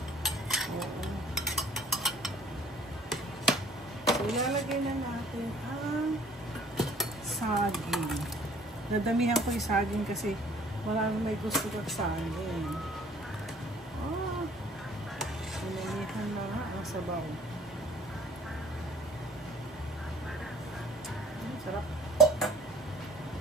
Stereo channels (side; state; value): both; normal; correlation 0.55